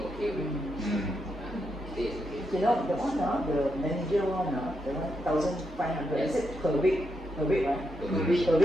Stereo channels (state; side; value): normal; both; correlation 0.83